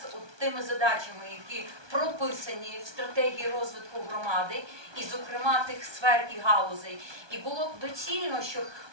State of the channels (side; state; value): left; late; 1.2 ms